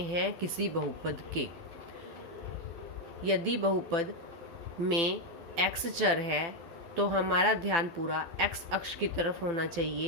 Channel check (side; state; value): left; late; 12 ms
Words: हैं किसी बहुपद के। यदि बहुपद में x चर है तो हमारा ध्यान पूरा x अक्ष की तरफ होना